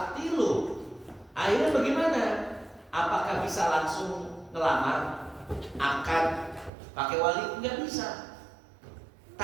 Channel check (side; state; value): left; drops out; at 6.7 s